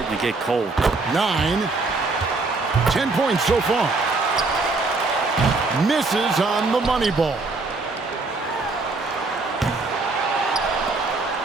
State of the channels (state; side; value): quieter; left; 3.6 dB